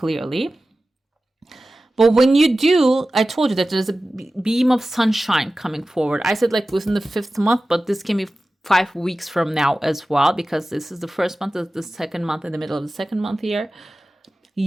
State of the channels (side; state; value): both; normal; correlation 0.95